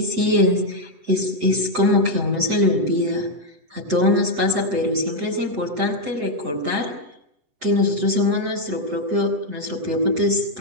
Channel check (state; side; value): late; left; 8.0 ms